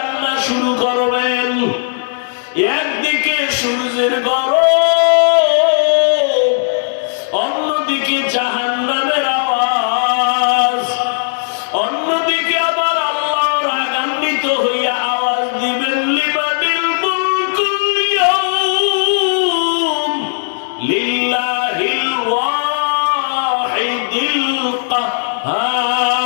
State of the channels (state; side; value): silent; right; digital silence